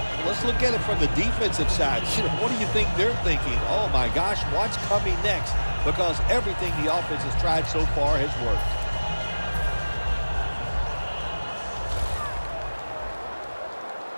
Let's look at it from the defensive side. What do you think they're thinking? Oh, my gosh, what's coming next? Because everything the offense has tried so far has worked.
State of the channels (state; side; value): inverted; both; correlation -1.00